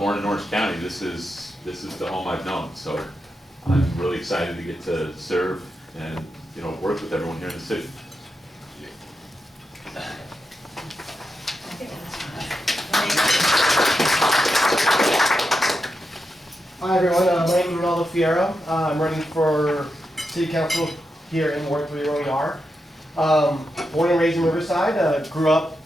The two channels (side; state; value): both; normal; correlation 0.87